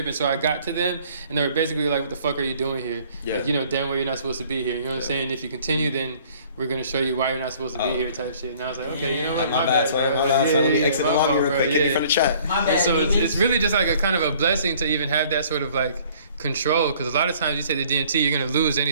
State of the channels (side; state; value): both; inverted; correlation -0.56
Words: And so I got to them, and they were basically like, what the fuck are you doing here? Yeah. Like, you know, damn well you're not supposed to be here. You know what I'm saying? If you continue, then we're going to show you why you're not supposed to be here type shit. And I was like, okay, you know what? My bad, bro. My bad, let me exit the lobby real quick. Get me from the chat. My bad. And so it's really just like a kind of a blessing to even have that sort of like control, because a lot of times you say the DMT, you're going to lose any